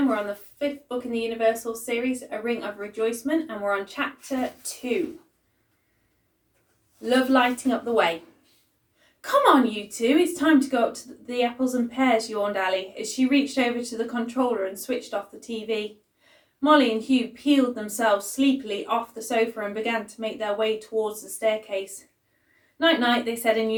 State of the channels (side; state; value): both; identical; correlation 1.00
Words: We're on the 5th book in the Universal series, A Ring of Rejoicement, and we're on chapter 2. Love lighting up the way. Come on, you two, it's time to go up to the apples and pears, yawned Ali, as she reached over to the controller and switched off the TV. Molly and Hugh peeled themselves sleepily off the sofa and began to make their way towards the staircase. Night-night, they said in